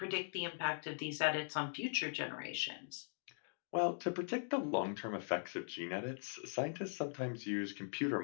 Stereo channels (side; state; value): right; silent; digital silence